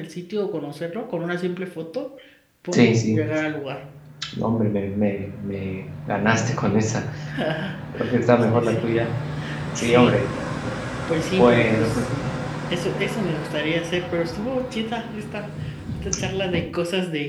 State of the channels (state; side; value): identical; both; correlation 1.00